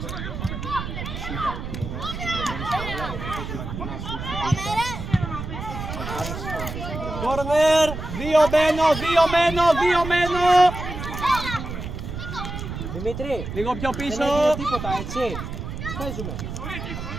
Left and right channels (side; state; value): right; noise; rumble, 7 dB below the sound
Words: Κόρνερ, δύο μένω. Δημήτρη, Λίγο πιο πίσω. δεν έγινε τίποτα, έτσι. Παίζουμε.